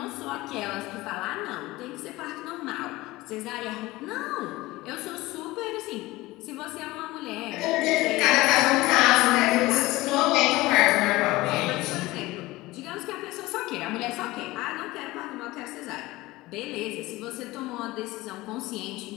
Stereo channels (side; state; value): right; quieter; 19.4 dB